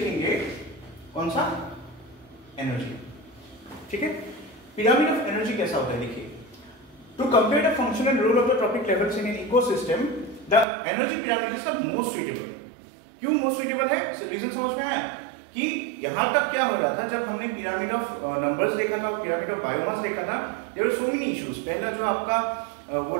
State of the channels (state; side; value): drops out; left; at 10.7 s